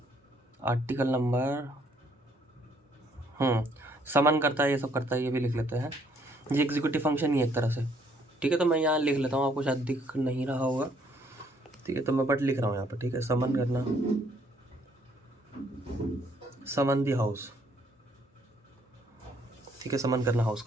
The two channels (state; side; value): normal; both; correlation 0.66